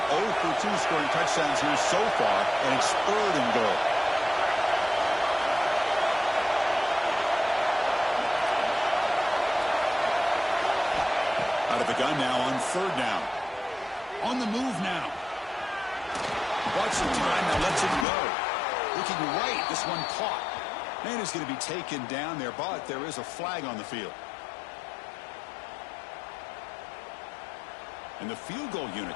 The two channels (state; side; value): drops out; right; at 18.1 s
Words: 0 for 2 scoring touchdowns here so far, and it's third and goal. Out of the gun now on third down. On the move now. Bought some time, now lets it go. Looking right, this one caught. Man is going to be taken down there, but there is a flag on the field. And the field goal unit